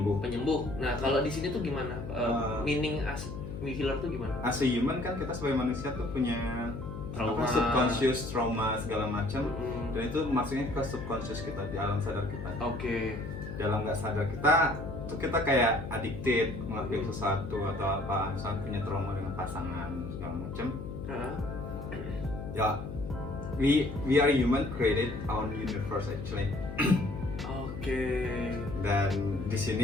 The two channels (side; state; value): left; noise; hum, 8 dB below the sound